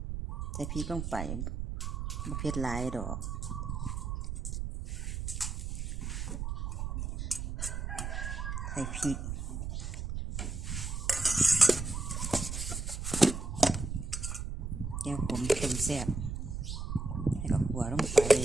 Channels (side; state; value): right; noise; rumble, 4 dB below the sound